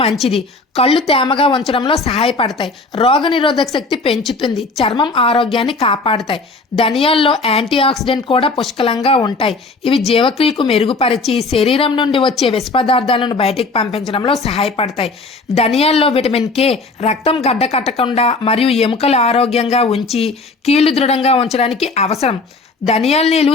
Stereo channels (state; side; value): quieter; right; 3.7 dB